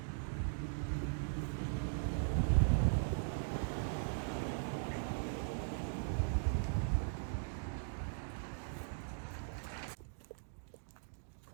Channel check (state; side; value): silent; left; digital silence